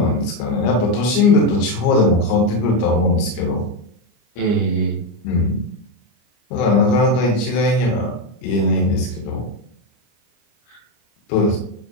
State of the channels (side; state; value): right; late; 25 ms